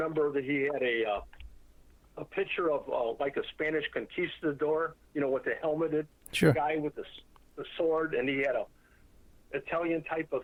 that he had a picture of like a Spanish conquistador, with the helmeted guy with the sword, and he had a Italian type of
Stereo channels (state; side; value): identical; both; correlation 1.00